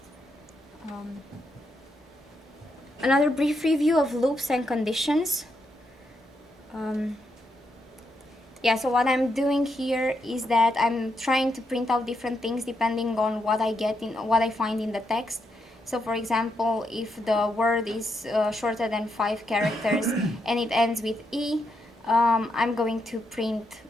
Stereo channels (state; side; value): normal; both; correlation 0.81